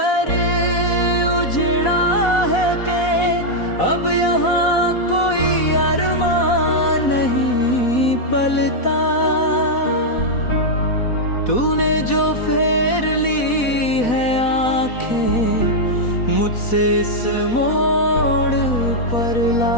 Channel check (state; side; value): late; right; 4.1 ms